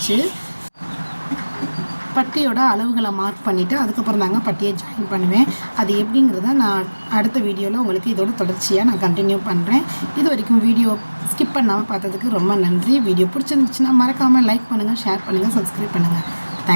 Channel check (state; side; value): inverted; both; correlation -1.00